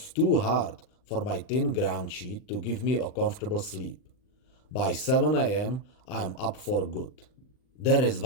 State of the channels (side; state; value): right; late; 39 ms